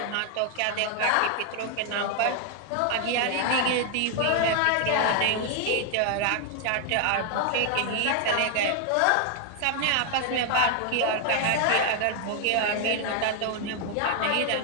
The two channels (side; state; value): both; different; correlation 0.00